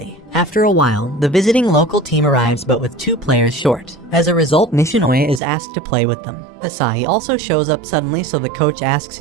After a while, the visiting local team arrives but with 2 players short. As a result, Nishinoya is asked to play with them. Asahi also shows up suddenly, so the coach asks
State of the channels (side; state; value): left; drops out; at 5.4 s